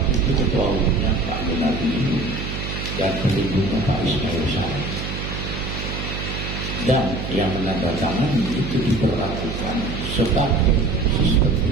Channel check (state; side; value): noise; right; hum, 5 dB below the sound